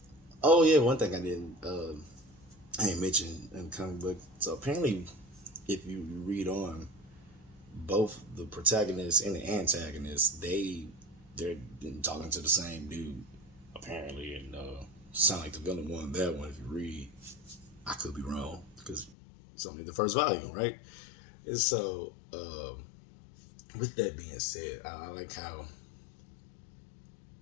Oh yeah, one thing I didn't mention in the comic book. So apparently, if you read on, both the protagonist and the antagonist, they're talking to the same dude, apparently, and sound like the villain won that one. If you read, I could be wrong because it's only the first volume, right? And so, with that being said, I like how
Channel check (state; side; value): drops out; right; at 19.2 s